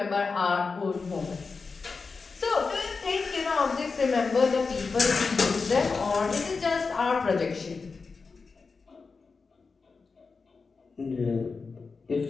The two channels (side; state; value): right; quieter; 4.6 dB